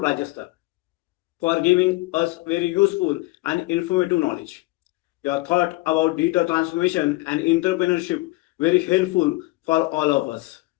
for giving us very useful and informative knowledge. Your thought about digital transformation and entrepreneurship very helpful for all of us.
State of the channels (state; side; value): quieter; right; 21.8 dB